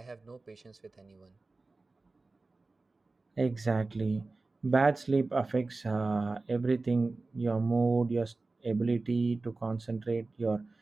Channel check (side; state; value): left; quieter; 3.5 dB